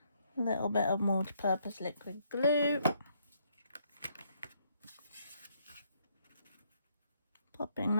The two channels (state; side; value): inverted; both; correlation -0.71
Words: A little bit of multi-purpose liquid glue. Popping